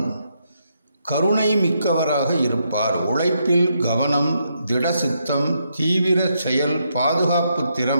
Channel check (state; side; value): inverted; both; correlation -0.78